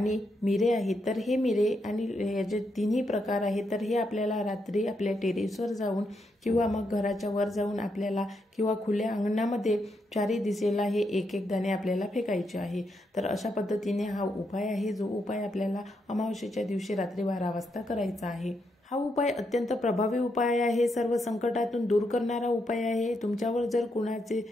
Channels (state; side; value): normal; both; correlation 0.80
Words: मिरे आहेत तर हे मिरे आणि याचे तिन्ही प्रकार आहेत तर हे आपल्याला रात्री आपल्या टेरेसवर जाऊन किंवा मग घराच्या वर जाऊन आपल्याला किंवा खुल्या अंगणामध्ये 4ही दिशेला हे एक एक दाणे आपल्याला फेकायचे आहे. तर अशा पद्धतीने हा उपाय आहे, जो उपाय आपल्याला अमावस्येच्या दिवशी रात्री 12 वाजता करायचा आहे. हा उपाय अत्यंत प्रभावी उपाय आहे, सर्व संकटातून दूर करणारा उपाय आहे. तुमच्यावर जर कुणाचे